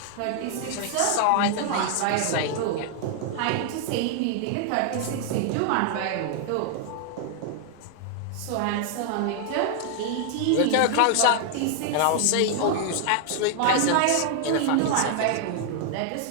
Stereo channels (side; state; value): both; different; correlation 0.00